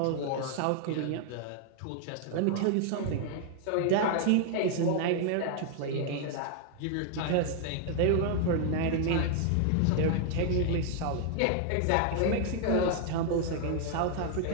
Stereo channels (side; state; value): both; different; correlation 0.00